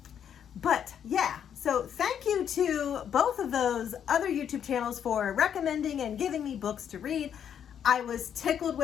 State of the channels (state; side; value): quieter; right; 8.7 dB